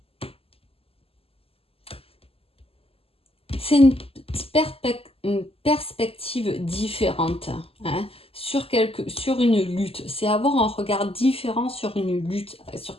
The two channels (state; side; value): late; right; 0.28 ms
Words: C'est une perspective différente hein, sur une lutte. C'est avoir un regard différent sur une lutte, sur